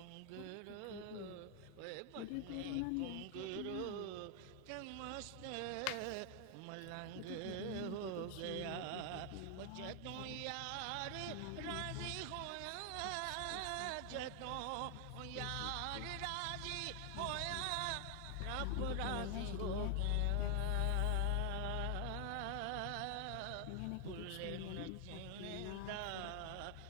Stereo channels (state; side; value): different; both; correlation 0.00